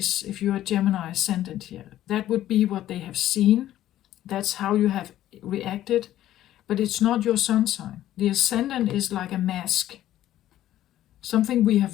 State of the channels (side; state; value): right; quieter; 13.1 dB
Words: if you're a Gemini ascendant here. That would be what they have seen. That's how you have reacted. But it's not your sun sign. The ascendant is like a mask. Something we